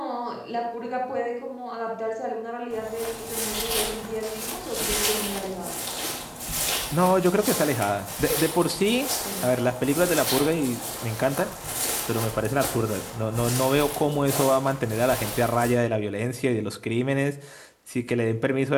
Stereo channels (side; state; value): both; identical; correlation 1.00